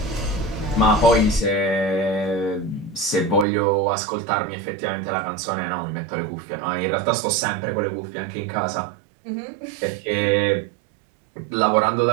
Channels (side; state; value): left; drops out; at 3.5 s